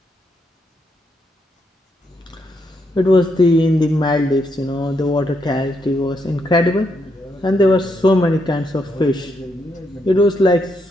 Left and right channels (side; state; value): both; normal; correlation 0.79